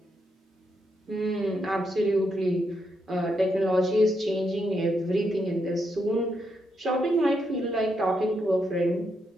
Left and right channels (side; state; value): both; normal; correlation 0.80